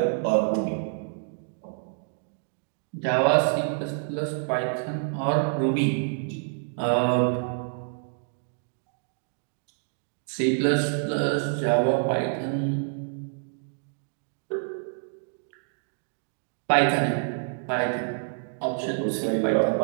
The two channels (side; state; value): left; silent; digital silence